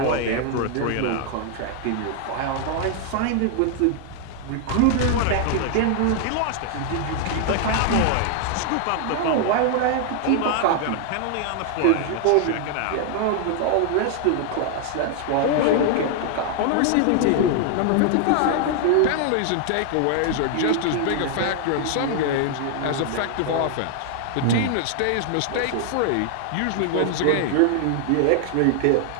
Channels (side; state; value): both; different; correlation 0.00